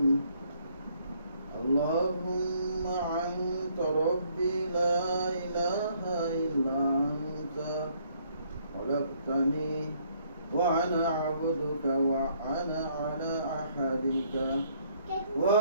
আল্লাহুম্মা আনতা রাব্বি লা ইলাহা ইল্লা আনতা খলাকতানি ওয়া আনা আবদুকা ওয়া আনা আলা আহাদিকা ওয়া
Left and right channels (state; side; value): inverted; both; correlation -0.66